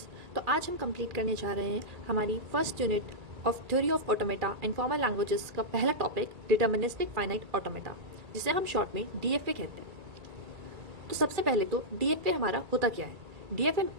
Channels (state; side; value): late; left; 1.9 ms